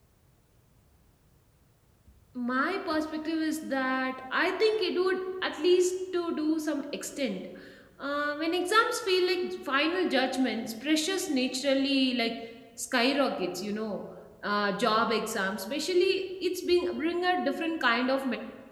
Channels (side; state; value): both; identical; correlation 1.00